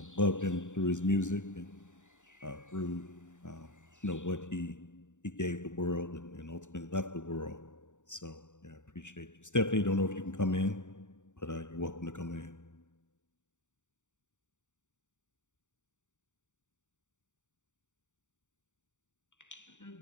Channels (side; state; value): right; late; 0.85 ms